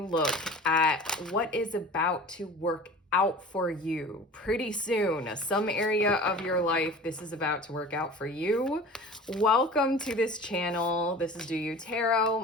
at what is about to work out for you pretty soon. Some area of your life, this is about to work out for you. Welcome to this channel. This is Do You Tarot.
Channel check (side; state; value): both; normal; correlation 0.39